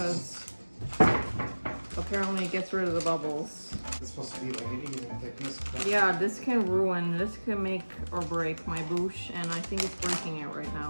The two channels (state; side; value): inverted; both; correlation -1.00